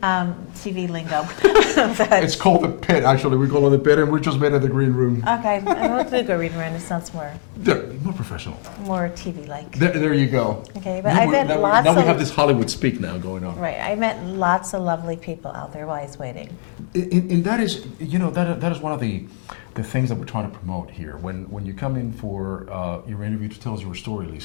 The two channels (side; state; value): right; silent; digital silence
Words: TV lingo. It's called the pit, actually. We call it the pit, and we just made it the green room. Okay, I will do green room. It sounds more professional. More TV-like. There you go. Okay, but now we have this Hollywood speak now going on. Right, I met lots of lovely people out there while I was waiting. And that is, that is one of the things that we're trying to promote here. When you come in for your interview to tell us your story,